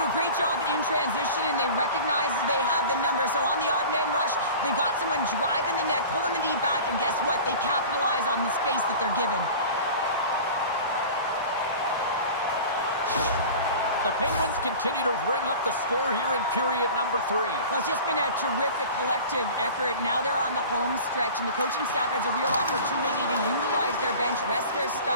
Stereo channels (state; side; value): inverted; both; correlation -0.38